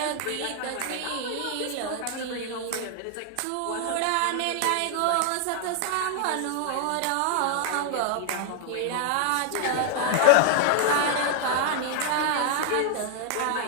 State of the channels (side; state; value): both; different; correlation 0.00